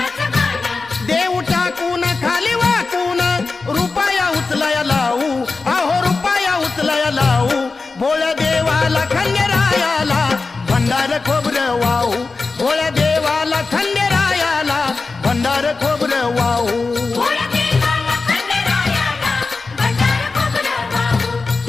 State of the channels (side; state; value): right; quieter; 4.0 dB